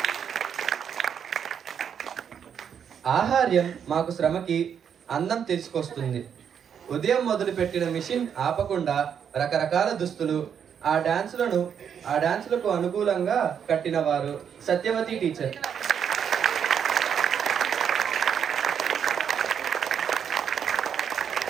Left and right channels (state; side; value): quieter; left; 7.9 dB